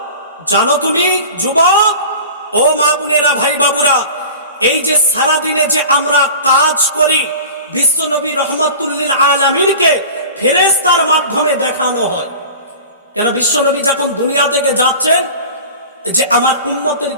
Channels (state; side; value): inverted; both; correlation -0.38